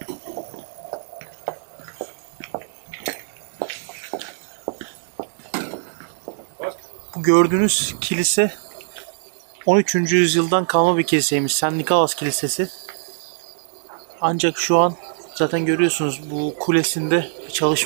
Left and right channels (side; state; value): left; silent; digital silence